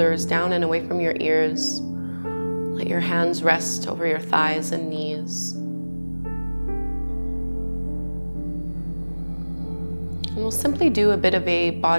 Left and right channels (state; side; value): inverted; both; correlation -1.00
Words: down and away from your ears. Let your hands rest over your thighs and knees. And we'll simply do a bit of a